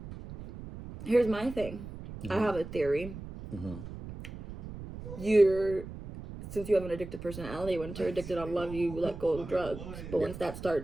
Here's my thing. I have a theory. Mm-hmm. Since you have an addictive personality, once you're addicted on love, you let go of drugs. But once that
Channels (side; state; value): right; noise; rumble, 11 dB below the sound